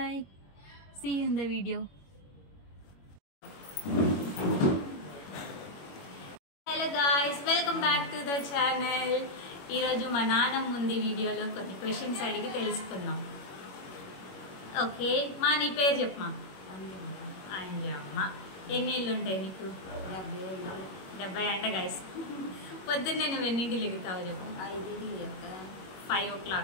see you in the video. Hello guys, welcome back to the channel. ఈరోజు మా నాన్నమ్మ ముందు వీడియోలో కొన్ని క్వశ్చన్స్ అడిగి తెలుసుకున్నాం. ఓకే, మా నీ పేరు చెప్పమా. అంజమ్మ. ఎన్ని ఇళ్ళు ఉంటాయి నీకు? 70 అంటే గాయస్. పొద్దున్నే నువ్వు ఎన్నింటి లెగుతావు చెప్పు? 5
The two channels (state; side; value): late; right; 21 ms